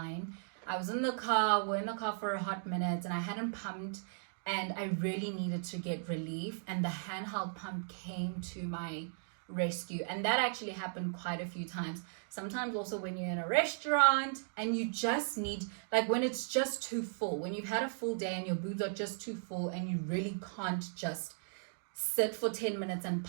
I was in the car, we're in the car for a hot minute, and I hadn't pumped, and I really needed to get relief. And the handheld pump came to my rescue. And that actually happened quite a few times. Sometimes also when you're in a restaurant and you just need, like when it's just too full, when you've had a full day and your boobs are just too full and you really can't just sit for 10 minutes and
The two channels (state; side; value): silent; left; digital silence